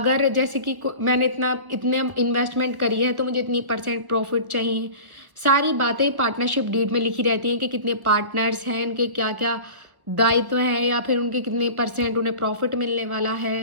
जैसे कि मैंने इतने इन्वेस्टमेंट करी है तो मुझे इतनी परसेंट प्रॉफिट चाहिए। सारी बातें पार्टनरशिप डीड में लिखी रहती हैं कि कितने पार्टनर्स हैं, इनके क्या क्या दायित्व हैं, या फिर उनके कितने परसेंट उन्हें प्रॉफिट मिलने वाला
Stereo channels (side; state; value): left; late; 1.5 ms